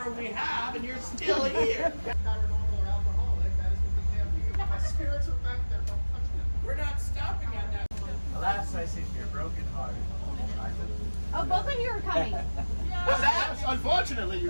we have, and you're still here. Paranormal or alcoholic, that is what they have you. My spirits are back there, don't touch them. We're not stopping at that. Alas, I see you're broken hearted. Oh, both of you are coming. What's that? Unfortunately, you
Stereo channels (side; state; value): both; inverted; correlation -1.00